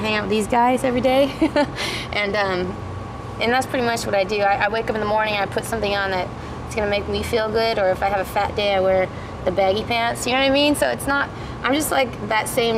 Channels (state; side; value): identical; both; correlation 1.00